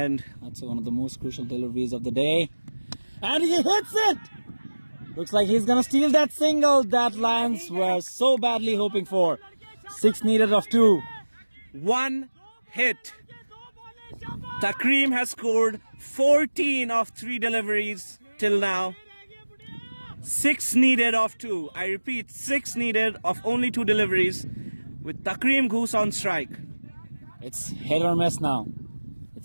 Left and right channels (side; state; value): both; inverted; correlation -1.00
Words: That's one of the most crucial deliveries of the day. And he hits it! Looks like he's gonna steal that single that Lions were so badly hoping for. 6 needed of 2. 1 hit. Takreem has scored 14 of 3 deliveries till now. 6 needed of 2. I repeat, 6 needed of only 2 deliveries with Takreem Goose on strike. It's hit or miss now.